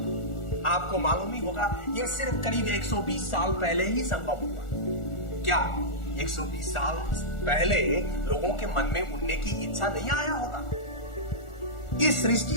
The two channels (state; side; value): late; right; 1.4 ms